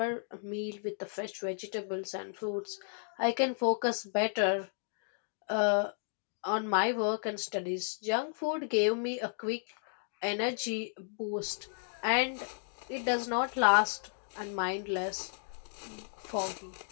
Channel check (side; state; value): right; silent; digital silence